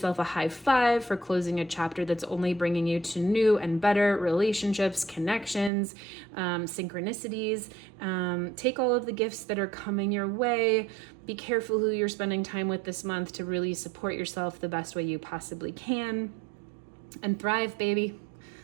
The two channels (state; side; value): drops out; left; at 5.7 s